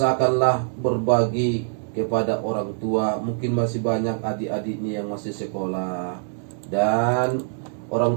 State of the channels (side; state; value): left; silent; digital silence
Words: berbagi kepada orang tua, mungkin masih banyak adik-adiknya yang masih sekolah dan orang